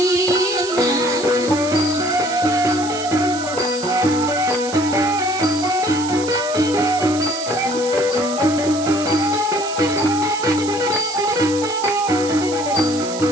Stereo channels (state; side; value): noise; right; hiss, 11 dB below the sound